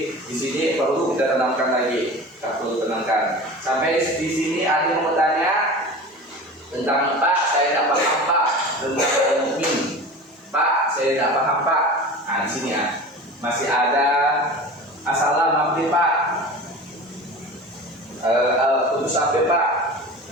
di sini perlu kita tenangkan lagi, kita perlu tenangkan. Sampai di sini ada yang mau bertanya tentang Pak, saya tidak paham Pak tentang Al-Mu'min. Pak, saya tidak paham Pak. Nah, di sini ya masih ada assalam mampir Pak. Putus apa Pak?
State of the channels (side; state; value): both; normal; correlation 0.34